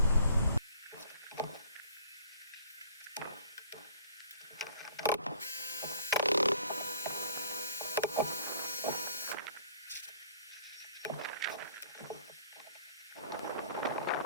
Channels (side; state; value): both; inverted; correlation -0.55